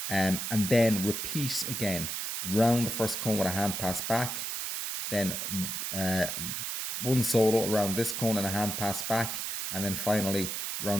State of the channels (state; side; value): noise; right; hiss, 3 dB below the sound